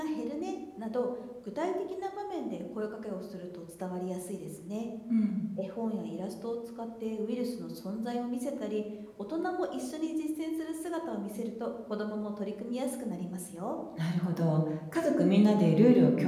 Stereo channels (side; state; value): both; identical; correlation 1.00